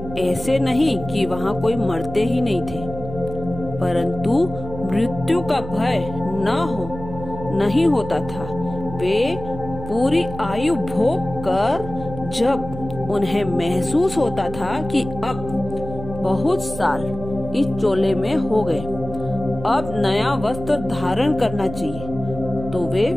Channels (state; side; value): noise; right; hum, 11 dB below the sound